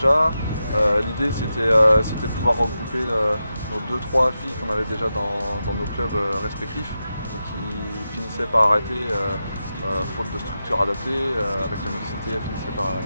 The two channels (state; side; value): inverted; both; correlation -0.89